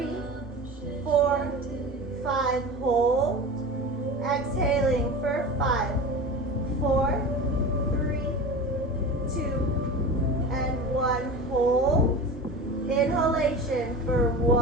4, 5, hold. Exhaling for 5, 4, 3, 2, and 1, hold. Inhalation for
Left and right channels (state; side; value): normal; both; correlation 0.31